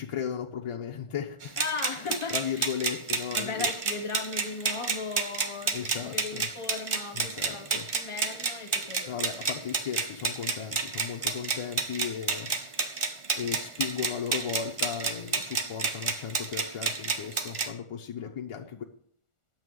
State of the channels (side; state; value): right; late; 1.4 ms